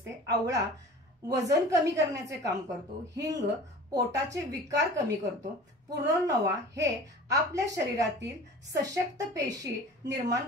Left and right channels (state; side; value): normal; both; correlation 0.41